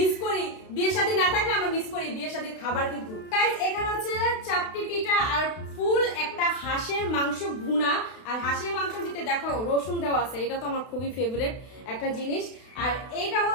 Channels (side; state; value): right; late; 32 ms